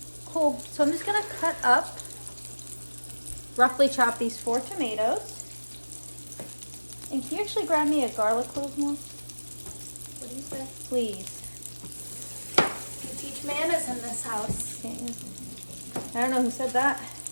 Cool. So I'm just gonna cut up, roughly chop these 4 tomatoes. And can you actually grab me a garlic clove more? What do you say? Please. You teach manners in this house. Okay. I don't know who said that.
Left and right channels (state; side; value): inverted; both; correlation -1.00